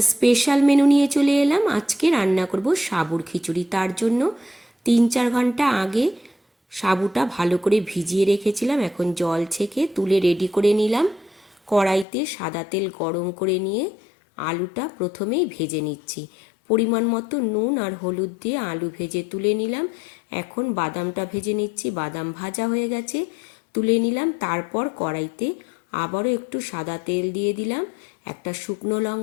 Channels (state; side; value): drops out; right; at 12.1 s